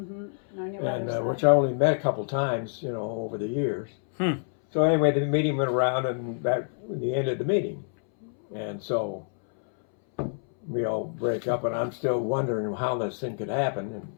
On your And mother's which side. I only met a couple times, over the years. So anyway, the meeting went around, and that the end of the meeting, and so we all break up, and I'm still wondering how this thing could happen, and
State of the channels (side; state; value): right; silent; 60 dB below the other